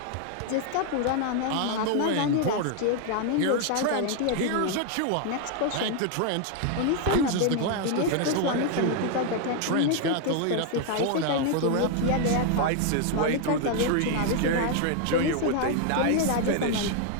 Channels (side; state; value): both; different; correlation 0.00